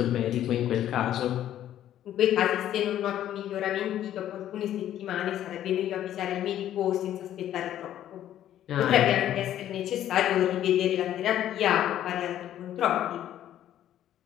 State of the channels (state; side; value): quieter; right; 11.7 dB